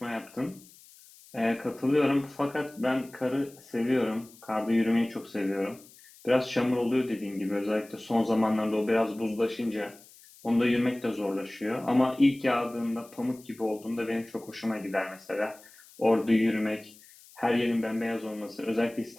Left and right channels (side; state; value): left; noise; hiss, 24 dB below the sound